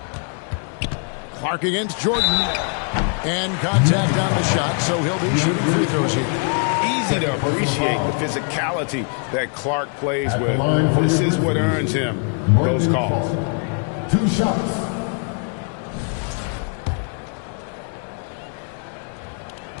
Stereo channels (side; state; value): right; quieter; 39.9 dB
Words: Clark against Jordan. And contact on the shot, so he'll be shooting free throws here. Easy to appreciate the physicality that Clark plays with. This is what earns him those calls. 2 shots.